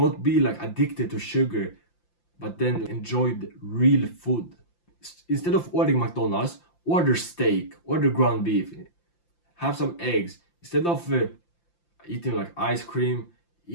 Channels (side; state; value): right; late; 5.8 ms